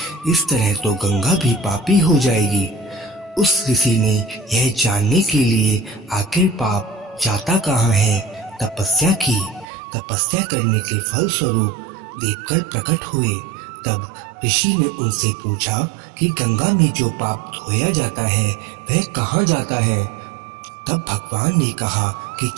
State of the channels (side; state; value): left; drops out; at 9.7 s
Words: इस तरह तो गंगा भी पापी हो जाएगी। उस ऋषि ने यह जानने के लिए आखिर पाप जाता कहाँ है तपस्या की। तपस्या करने के फल स्वरूप देवकर प्रकट हुए। तब ऋषि ने उनसे पूछा कि गंगा में जो पाप धोया जाता है वह कहाँ जाता है। तब भगवान ने कहा कि